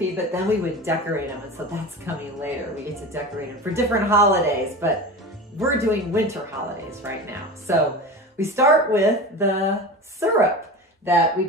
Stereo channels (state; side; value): normal; both; correlation 0.30